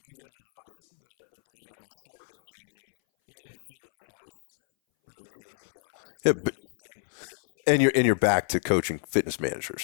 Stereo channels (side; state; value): right; silent; 59 dB below the other